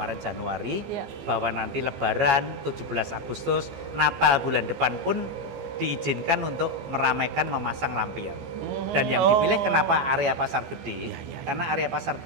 Januari, Iya. bahwa nanti Lebaran 17 Agustus, Natal bulan depan pun diizinkan untuk meramaikan memasang lampion. Dan yang dipilih kenapa area Pasar Gede? Karena area Pasar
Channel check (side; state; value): left; late; 14 ms